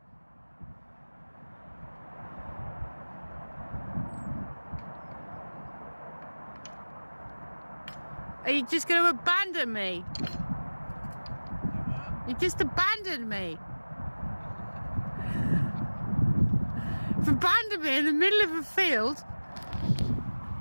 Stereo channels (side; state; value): both; inverted; correlation -1.00